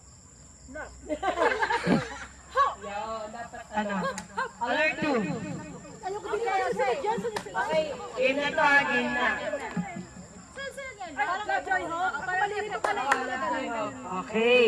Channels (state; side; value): identical; both; correlation 1.00